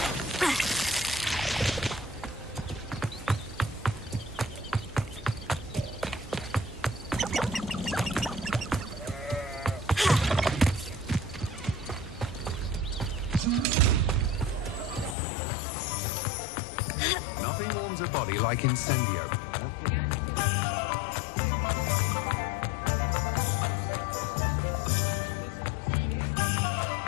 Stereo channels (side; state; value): right; drops out; at 15.2 s